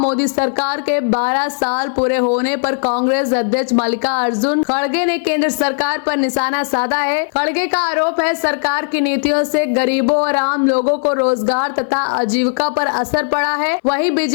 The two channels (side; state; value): right; silent; 62 dB below the other